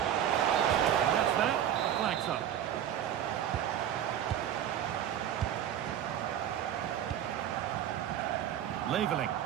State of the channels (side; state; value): left; quieter; 10.4 dB